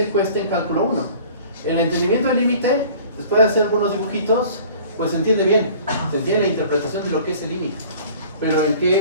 cuesta en cálculo 1. El entendimiento del límite, después de hacer algunos dibujitos, pues se entiende bien, se entiende la interpretación de lo que es el límite. Pero en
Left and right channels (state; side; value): inverted; both; correlation -0.47